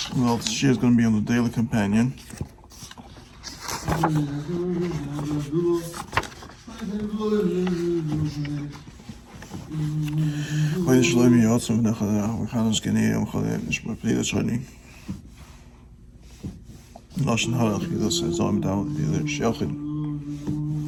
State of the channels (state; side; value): identical; both; correlation 1.00